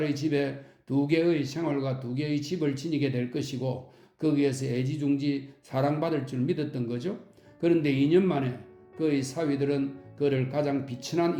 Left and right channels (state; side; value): identical; both; correlation 1.00